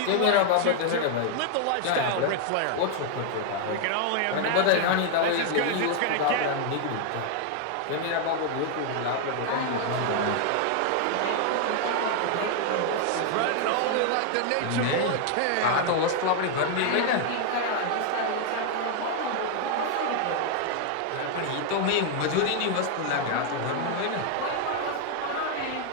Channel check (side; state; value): both; different; correlation 0.00